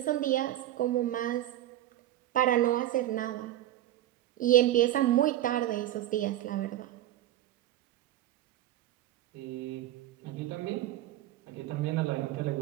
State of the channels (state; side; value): quieter; left; 13.6 dB